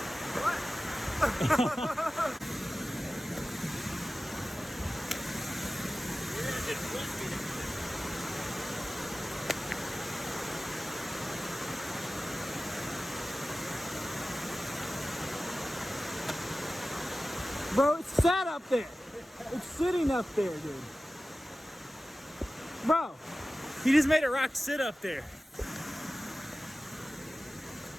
Bro, it's sat up there. It's sitting up there, dude. Bro, he just made a rock sit up there.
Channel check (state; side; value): normal; both; correlation 0.96